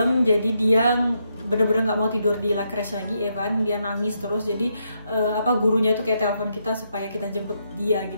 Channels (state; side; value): inverted; both; correlation -0.79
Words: jadi dia bener-bener nggak mau tidur di La Crèche lagi. Evan dia nangis terus, jadi gurunya itu kayak telepon kita supaya kita jemput dia